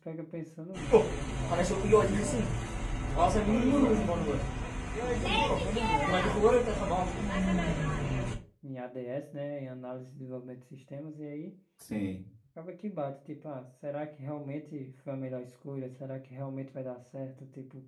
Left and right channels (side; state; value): both; identical; correlation 1.00